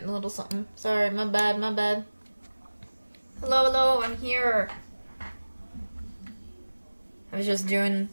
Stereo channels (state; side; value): inverted; both; correlation -1.00